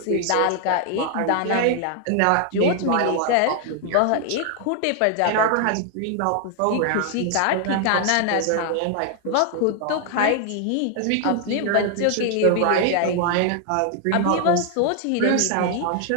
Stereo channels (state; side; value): different; both; correlation 0.00